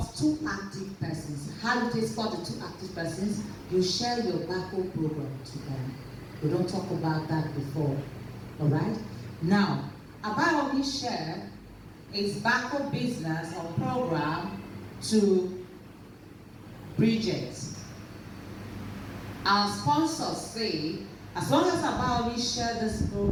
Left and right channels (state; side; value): identical; both; correlation 1.00